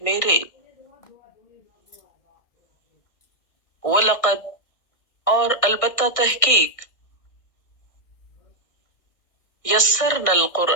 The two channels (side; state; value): right; late; 1.6 ms